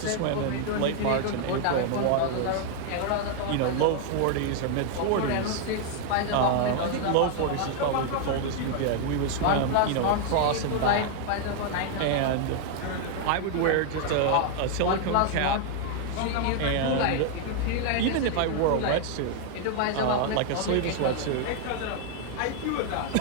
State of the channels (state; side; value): different; both; correlation 0.00